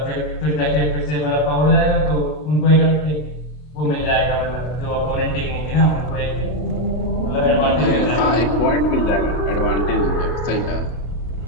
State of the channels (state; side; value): late; right; 33 ms